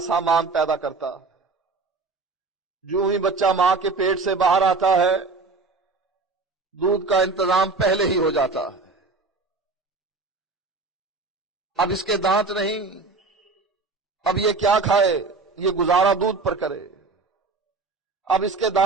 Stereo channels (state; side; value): quieter; left; 3.9 dB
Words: سامان پیدا کرتا ہے۔ جو ہی بچہ ماں کے پیٹ سے باہر آتا ہے دودھ کا انتظام پہلے ہی ہو جاتا ہے۔ اب اس کے دانت نہیں، اب یہ کیا کھائے؟ یہ گزارا دودھ پر کرے۔ اب اس کے